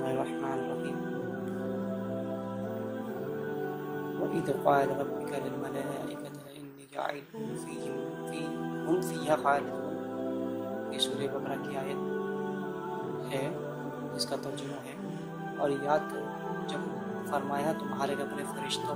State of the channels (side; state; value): both; identical; correlation 1.00